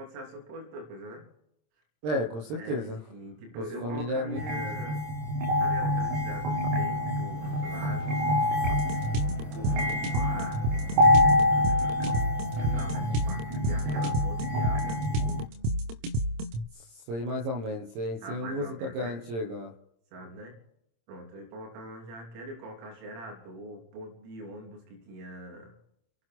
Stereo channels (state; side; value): late; left; 26 ms